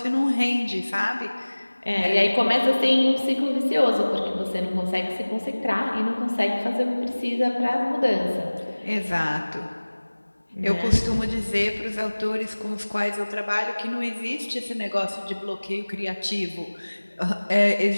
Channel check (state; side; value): inverted; both; correlation -1.00